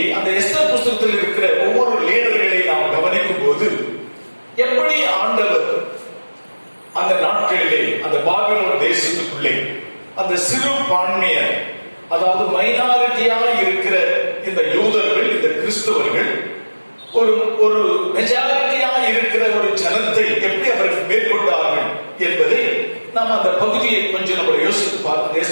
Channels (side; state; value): both; inverted; correlation -1.00